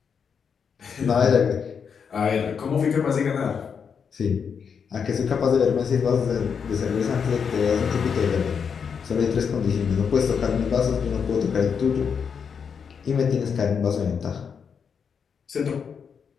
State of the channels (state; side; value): quieter; right; 6.6 dB